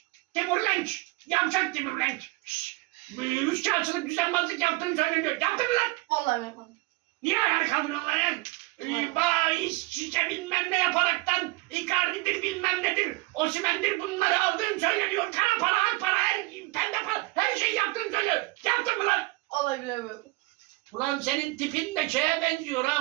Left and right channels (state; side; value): quieter; left; 23.4 dB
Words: Timur Lenç. Yavşak Timur Lenç. Üçkağıtçılık düzenbazlık yaptığını söyleniyor. Yaptın mı lan? Vallahi yapmadım. Niye ayağa kaldırıyorsun lan ya? Bahis, şişe bilmem ne yaparaktan Icardi'dir bilmem nedir, Osimhen'dir bunları aldığın söyleniyor. Kara para, ak para, pembe para, her şeyi yaptığını söylüyor. Yaptın mı lan? Vallahi bilemiyorum. Ulan senin tipin de şeye benziyor